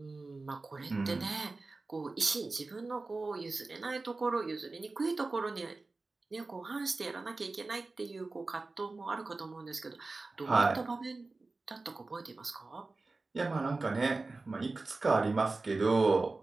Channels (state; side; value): quieter; left; 3.5 dB